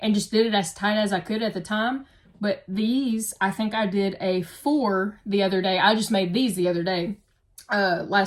just did it as tight as I could at the time. But these, I think I did a 4 the other day. I just made these the other day,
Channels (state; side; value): identical; both; correlation 1.00